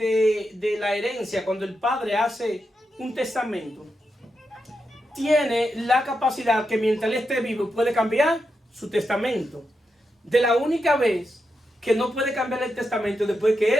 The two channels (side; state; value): both; normal; correlation 0.86